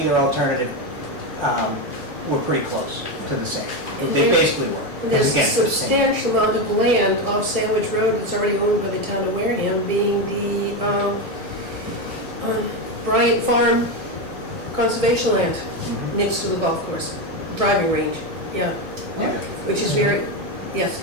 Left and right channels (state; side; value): normal; both; correlation 0.12